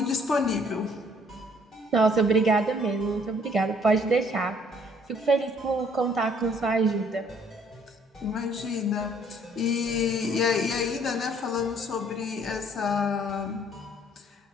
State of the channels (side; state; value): both; normal; correlation 0.61